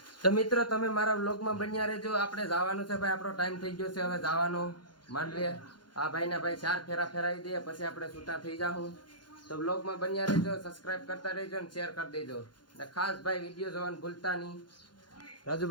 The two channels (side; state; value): right; late; 0.71 ms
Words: તો મિત્રો તમે મારા વ્લોગમાં બન્યા રહેજો. આપણે જવાનું છે ભાઈ, આપણો ટાઈમ થઈ ગયો છે હવે જવાનો માંડવે. આ ભાઈને ભાઈ 4 ફેરા ફેરાવી દઈએ પછી આપણે છૂટા થઈ જાઉં. તો વ્લોગમાં બન્યા રહેજો, સબસ્ક્રાઇબ કરતા રહેજો અને શેર કરી દેજો. અને ખાસ ભાઈ વિડીયો જોવાનું ભૂલતા નહીં.